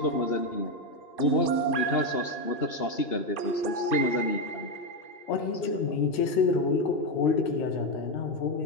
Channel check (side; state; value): right; late; 2.8 ms